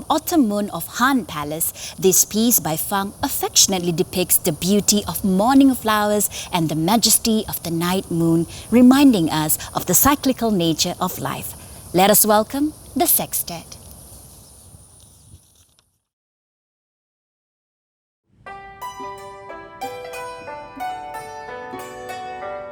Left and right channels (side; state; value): both; identical; correlation 1.00